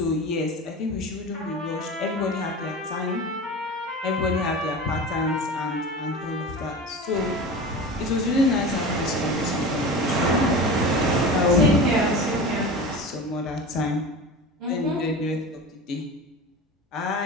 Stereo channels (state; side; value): normal; both; correlation 0.32